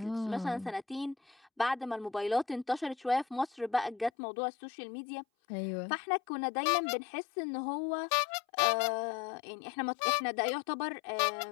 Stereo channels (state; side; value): drops out; right; at 4.1 s